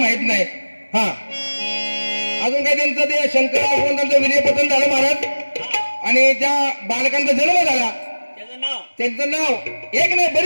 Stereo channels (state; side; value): inverted; both; correlation -1.00